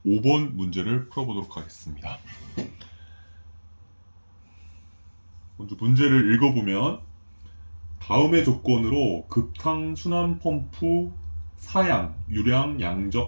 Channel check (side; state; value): both; inverted; correlation -1.00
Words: 5번 문제를 풀어보도록 하겠습니다. 먼저 문제를 읽어보면 다음의 조건으로 급탕 순환 펌프 사양, 유량,